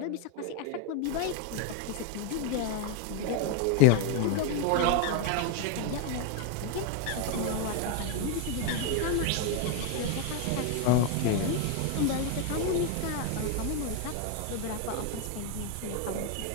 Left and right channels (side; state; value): both; different; correlation 0.01